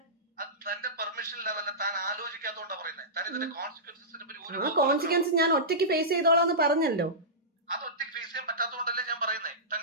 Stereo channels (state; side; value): normal; both; correlation -0.17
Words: ആ കോൺസിക്വൻസ് ഞാൻ ഒറ്റയ്ക്ക് ഫേസ് ചെയ്തോളാന്ന് പറഞ്ഞല്ലോ.